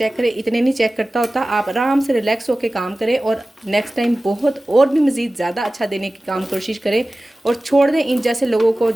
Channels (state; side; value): normal; both; correlation 0.96